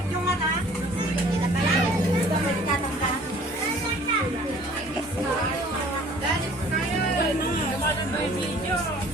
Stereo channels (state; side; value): normal; both; correlation 0.52